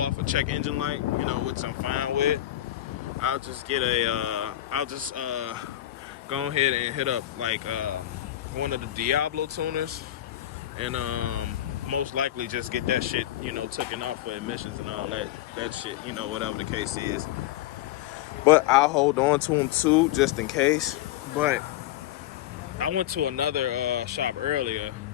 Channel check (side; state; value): right; quieter; 13.5 dB